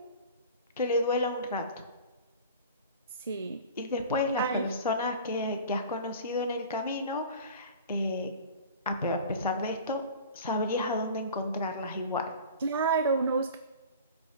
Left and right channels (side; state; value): both; inverted; correlation -0.38